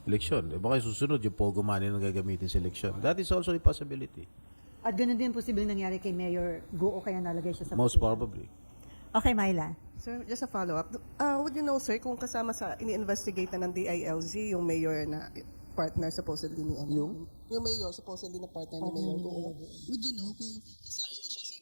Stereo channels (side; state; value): both; inverted; correlation -1.00